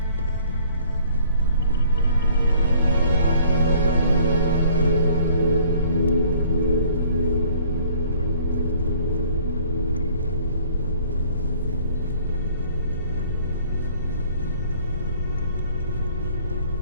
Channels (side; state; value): both; inverted; correlation -0.56